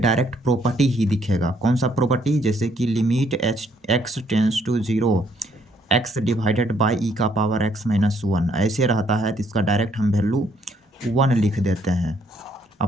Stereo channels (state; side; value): normal; both; correlation 0.68